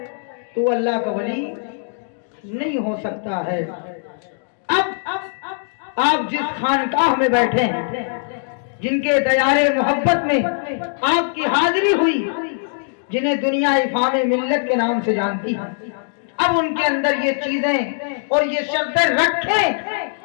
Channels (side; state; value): right; silent; digital silence